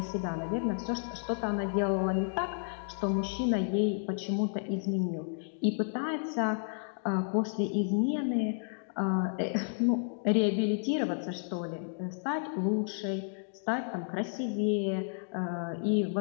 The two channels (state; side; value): silent; right; digital silence